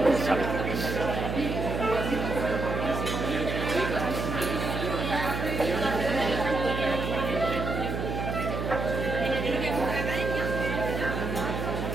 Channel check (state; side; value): noise; right; hum, 3 dB below the sound